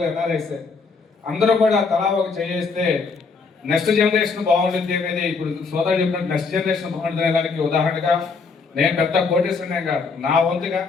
ఎన్ఆర్ఐసే. అందరూ కూడా తలా ఒక చేస్తే నెక్స్ట్ జనరేషన్ బాగుంటుంది అనేది ఇప్పుడు సోదరు చెప్పినట్టు నెక్స్ట్ జనరేషన్ బాగుంటుంది దానికి ఉదాహరణగా నేను పెద్ద కోటేశ్వరనే కాదు, నా వంతుగా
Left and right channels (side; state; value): right; quieter; 4.8 dB